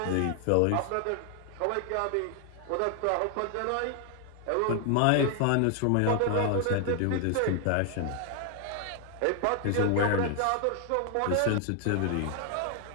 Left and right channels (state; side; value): different; both; correlation 0.00